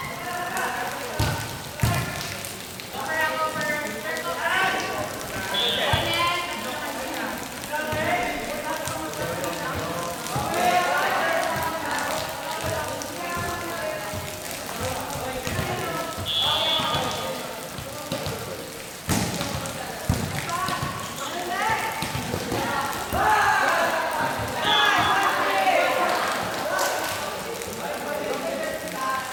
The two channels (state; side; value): identical; both; correlation 1.00